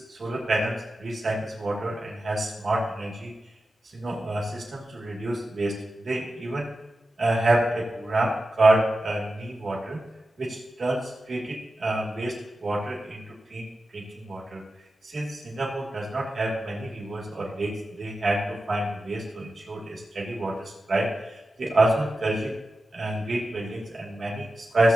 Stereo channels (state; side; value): normal; both; correlation 0.92